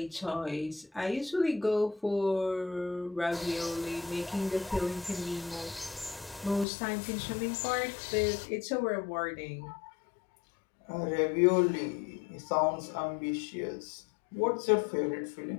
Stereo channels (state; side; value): drops out; right; at 6.7 s